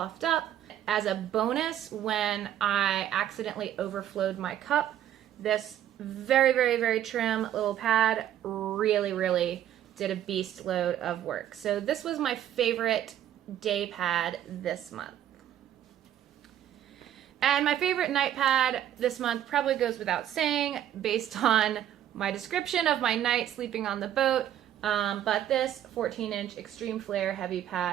Up. As a bonus, when I accidentally overflowed my cup, this very, very, very trim little pad really did a beast load of work. So this was my favorite day pad this month. And my favorite night pad this month probably goes without saying based on my description of my night sleeping on the boat, but this 14-inch Extreme Flare heavy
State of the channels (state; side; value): quieter; left; 11.2 dB